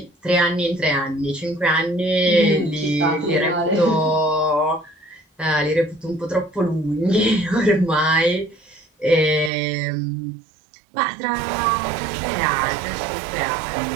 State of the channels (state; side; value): drops out; left; at 9.5 s